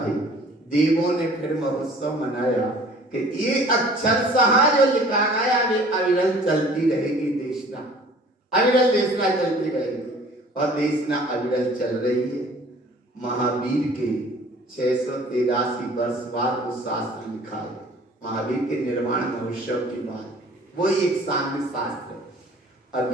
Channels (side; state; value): both; normal; correlation 0.50